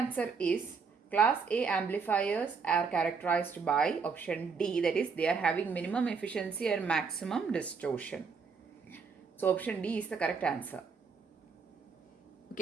is class A amplifiers are characterized by option D, that is they are having minimum efficiency and maximum distortion. So option D is the correct answer.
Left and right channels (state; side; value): quieter; left; 5.4 dB